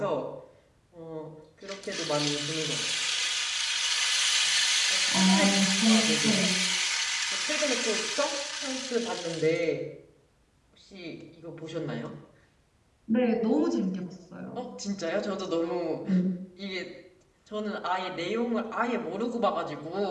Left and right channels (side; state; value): both; identical; correlation 1.00